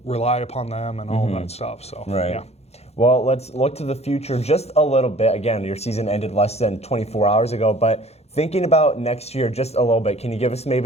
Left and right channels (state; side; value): late; right; 0.31 ms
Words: rely upon them and all of that stuff. So, right. Yeah. Well, let's look to the future just a little bit. Again, your season ended less than 24 hours ago, but thinking about next year just a little bit, can you give us